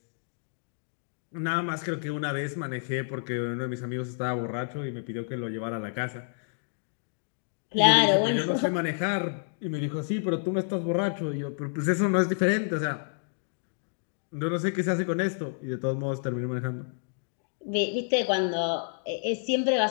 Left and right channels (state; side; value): silent; right; digital silence